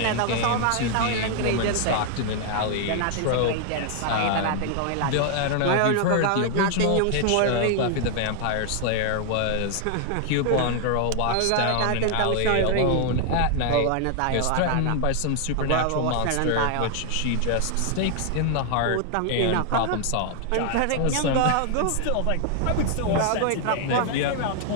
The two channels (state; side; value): different; both; correlation 0.00